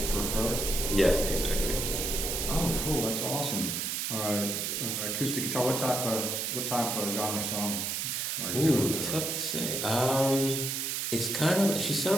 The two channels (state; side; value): noise; right; hiss, 1 dB below the sound